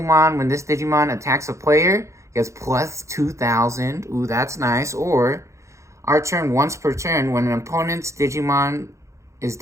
when this Digimon attacks a player, gets plus 2,000. Ooh, that's nice. Or our turn once per turn, when an opponent's Digimon is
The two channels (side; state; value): left; late; 0.14 ms